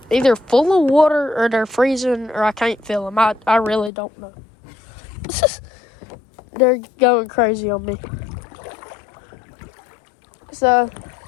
either full of water or they're freezing or I can't feel them. I really don't know. They're going crazy on me. So,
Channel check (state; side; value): drops out; right; at 3.9 s